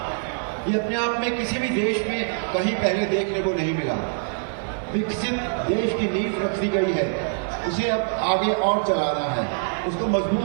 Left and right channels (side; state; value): left; silent; 60 dB below the other